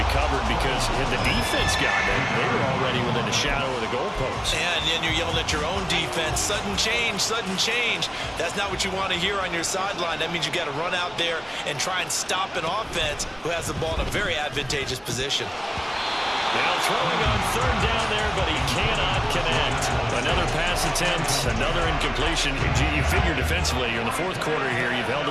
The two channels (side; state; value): both; identical; correlation 1.00